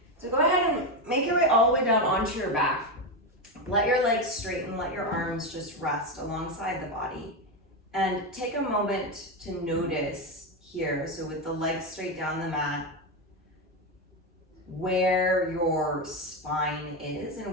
So go ahead and make your way all the way down onto your back. Let your legs straighten, let your arms just rest alongside the body. And take a moment to notice here, so with the legs straight down the mat, where your spine is and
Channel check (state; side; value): normal; both; correlation 0.11